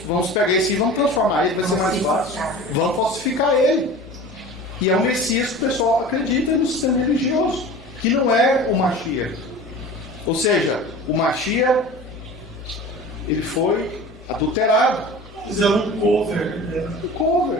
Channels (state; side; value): normal; both; correlation 0.38